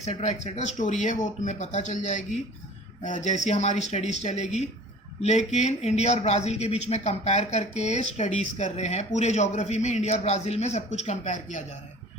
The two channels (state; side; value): normal; both; correlation 0.45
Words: एक्सेट्रा, स्टोरी है वो तुम्हें पता चल जाएगी जैसी हमारी स्टडीज़ चलेगी। लेकिन इंडिया और ब्राज़ील के बीच में कंपेयर करके स्टडीज़ कर रहे हैं, पूरे ज्योग्राफी में इंडिया और ब्राज़ील में सब कुछ कंपेयर किया जा रहा है,